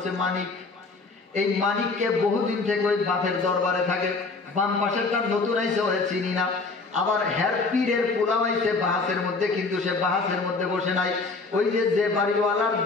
মানিক। এই মানিককে বহুদিন থেকে ওই বাপের দরবারে থাকে। বাম পাশেরটা নতুন আইসে, ওরে চিনি না। আবার হের পীরের পোলাও আইছে বাহাসের মধ্যে, কিন্তু সে বাহাসের মধ্যে বসে নাই। ওই যে বাড়িওয়ালার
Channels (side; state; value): right; quieter; 3.9 dB